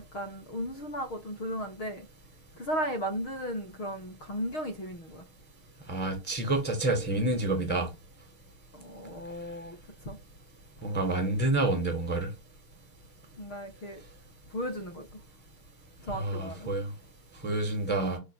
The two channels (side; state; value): right; late; 6.4 ms